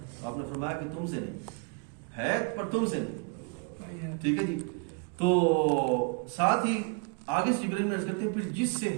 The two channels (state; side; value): quieter; left; 35.3 dB